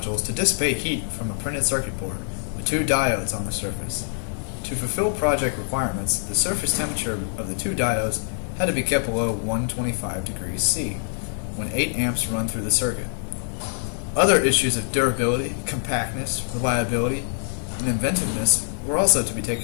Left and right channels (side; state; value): right; silent; 62 dB below the other